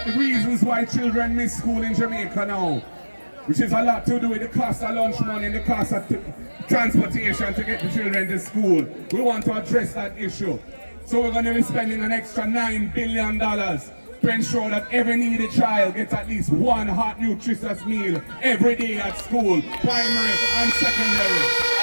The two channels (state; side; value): inverted; both; correlation -1.00